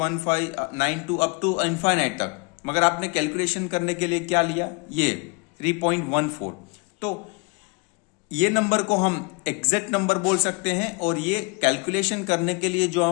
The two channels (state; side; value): quieter; right; 30.9 dB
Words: अप टू इनफाइनाइट तक, मगर आपने कैलकुलेशन करने के लिए क्या लिया, ये 3.14। तो ये नंबर को हम एग्जैक्ट नंबर बोल सकते हैं, और ये कैलकुलेशन करने के लिए जो